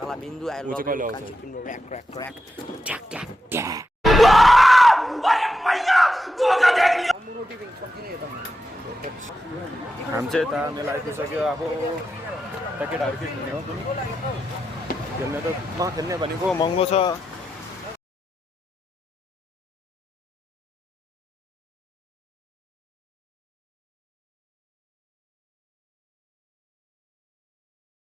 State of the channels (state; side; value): normal; both; correlation 0.87